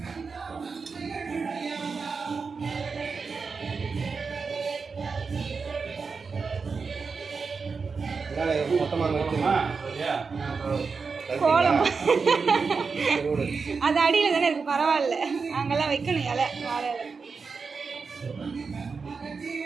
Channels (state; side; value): quieter; left; 5.0 dB